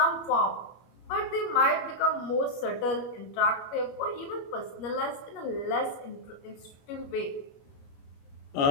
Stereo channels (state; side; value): late; right; 21 ms